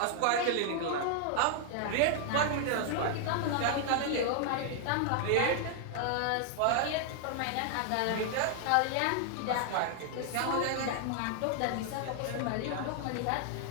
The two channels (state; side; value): different; both; correlation 0.00